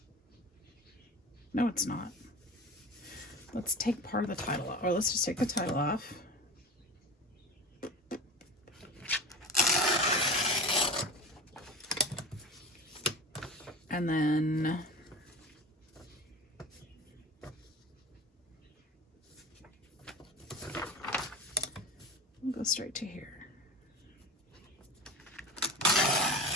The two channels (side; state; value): both; normal; correlation 0.32